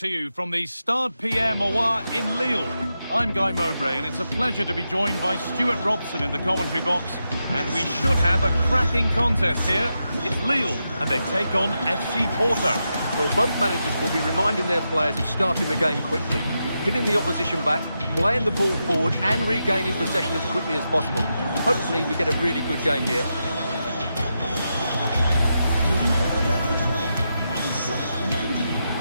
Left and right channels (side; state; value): both; inverted; correlation -0.87